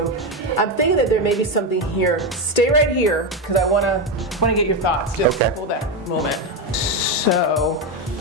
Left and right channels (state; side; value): normal; both; correlation 0.11